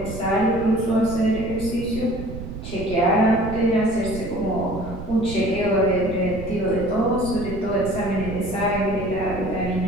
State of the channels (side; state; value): right; noise; rumble, 9 dB below the sound